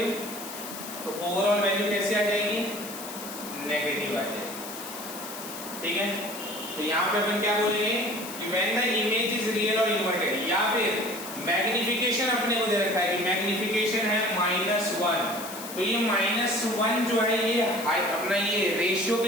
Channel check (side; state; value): left; noise; hiss, 11 dB below the sound